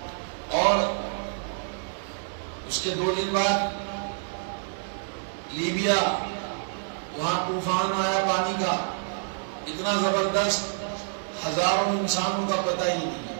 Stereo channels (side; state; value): left; silent; 60 dB below the other